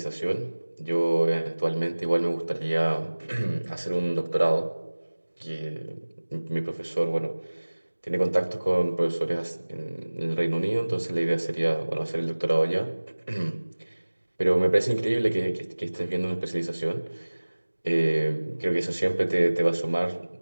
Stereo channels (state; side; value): inverted; both; correlation -1.00